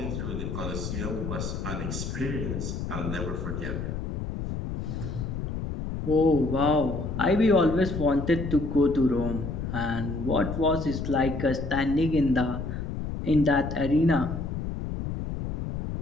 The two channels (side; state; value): left; noise; rumble, 5 dB below the sound